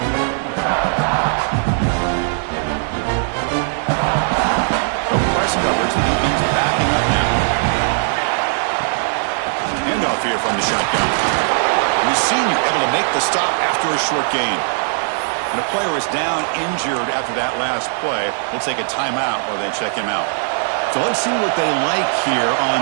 No press coverage. The DB's backing up now. Handoff here from the shotgun. The senior able to make the stop after a short gain. And a player is down injured after that last play. We'll take a timeout while they check him out. So let's see what they like here on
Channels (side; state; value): left; silent; 67 dB below the other